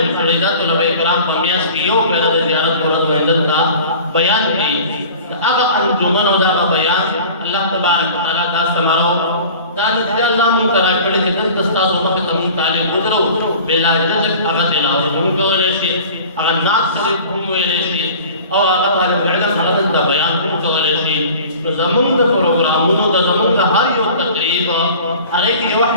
کړی دا طلبه کرام په میاشت کې یو پیره د زیارت ورځ باندې دلته بیان کړي د هغه انجمن او د هغه بیان الله تبارک وتعالی دا ثمره دا نتیجه الله موږ ته راکړې چې دلته ستاسو مخې ته موږ طالب ودرو بلا جزک هغه تلاوت هم کولی شي هغه نعت شریف هم ویلی شي او هغه طالب العلم هغه د بیان کولی شي. نو زموږ د پروګرامونو د زموږ د هر یو تقریب هغې کې یوه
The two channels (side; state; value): both; inverted; correlation -0.43